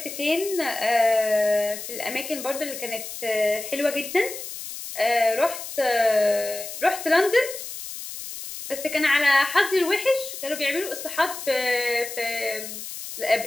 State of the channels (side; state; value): left; noise; hiss, 9 dB below the sound